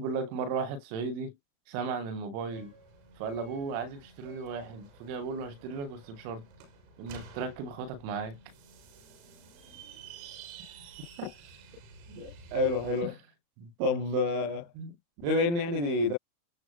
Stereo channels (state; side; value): late; left; 35 ms